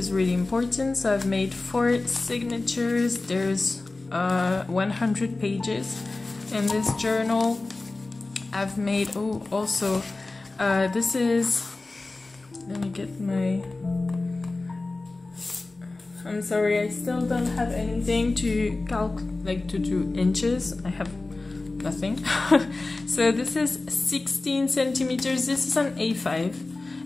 really important. So I've made 4 signatures. There's 100 pages in this journal. I've made, oh, also, this is, let me get my, I'm sorry, I still don't have anything to like to do inches. I have nothing. So this is 16 centimeters. This is an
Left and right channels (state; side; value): quieter; right; 3.3 dB